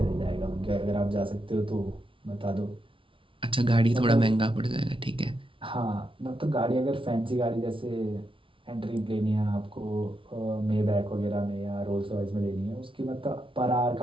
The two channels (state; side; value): late; left; 0.25 ms